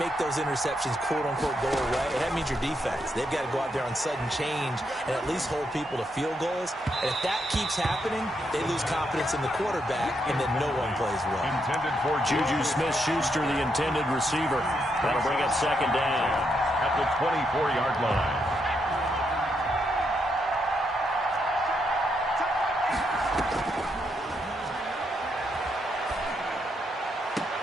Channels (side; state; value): both; normal; correlation 0.79